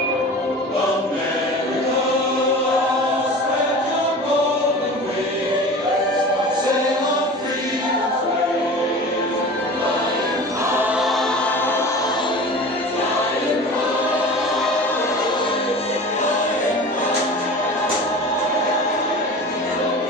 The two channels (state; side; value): normal; both; correlation 0.36